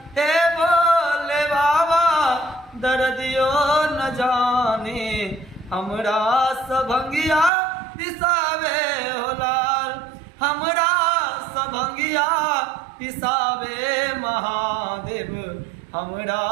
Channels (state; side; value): drops out; left; at 7.5 s